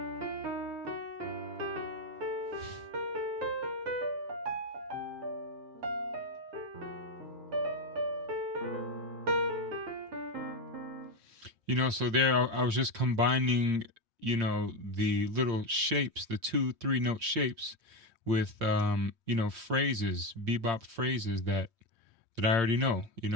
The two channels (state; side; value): late; left; 5.6 ms